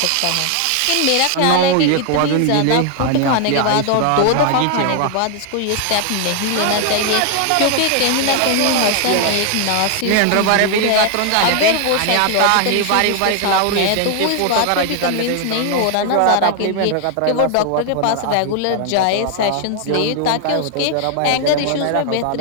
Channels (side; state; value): both; different; correlation 0.00